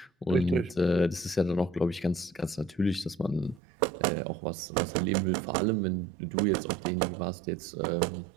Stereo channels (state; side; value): drops out; left; at 3.6 s